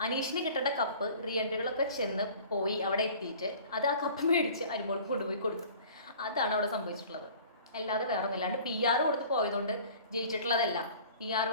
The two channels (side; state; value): both; inverted; correlation -0.47